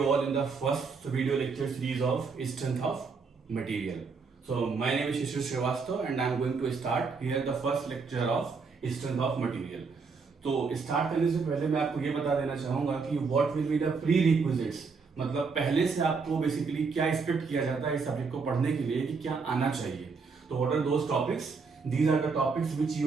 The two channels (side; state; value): left; quieter; 4.9 dB